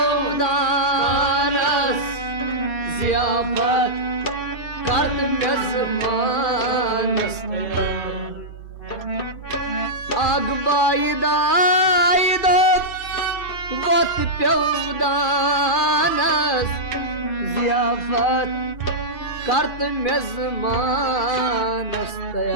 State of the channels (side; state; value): right; late; 2.4 ms